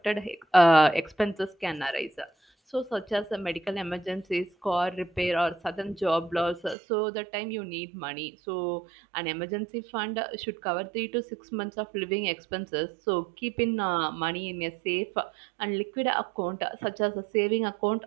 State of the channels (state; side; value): drops out; left; at 6.8 s